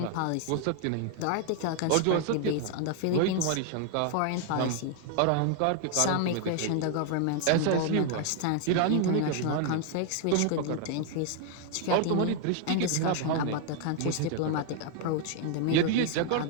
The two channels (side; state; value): both; different; correlation 0.00